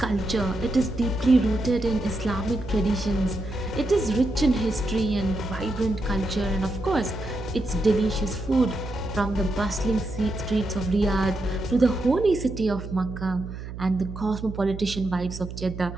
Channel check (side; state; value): right; noise; hum, 9 dB below the sound